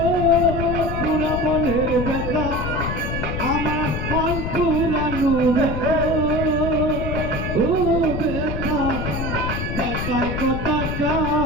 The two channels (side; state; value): left; noise; rumble, 4 dB below the sound